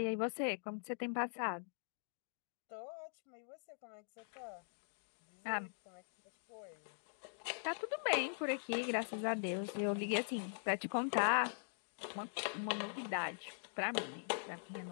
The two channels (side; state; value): right; silent; digital silence